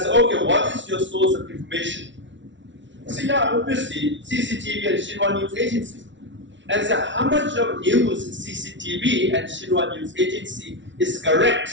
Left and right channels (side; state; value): left; late; 0.54 ms